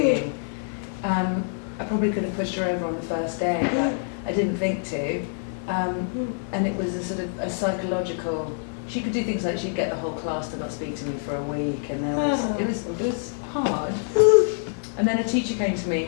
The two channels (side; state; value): right; silent; 61 dB below the other